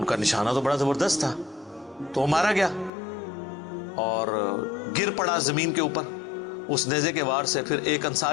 کا نشانہ تو بڑا زبردست تھا، تو وہ مارا گیا اور گر پڑا زمین کے اوپر اس نیزے کے وار سے. پھر ایک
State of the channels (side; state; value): right; drops out; at 2.9 s